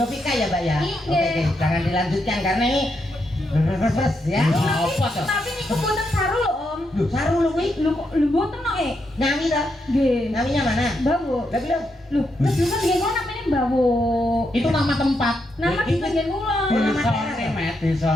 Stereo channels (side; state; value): both; normal; correlation 0.81